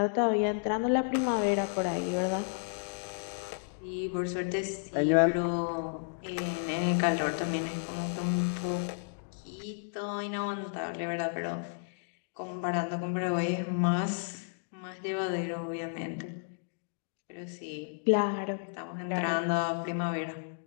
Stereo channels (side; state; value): right; silent; digital silence